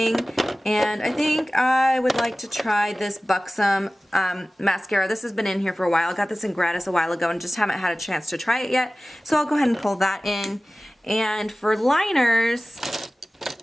And I think I would like to try this Buxom mascara. This has been in here for a while. I got this in gratis a while ago and just haven't had a chance to try it yet. So I'll go ahead and pull that in. And for liners,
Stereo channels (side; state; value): both; normal; correlation 0.97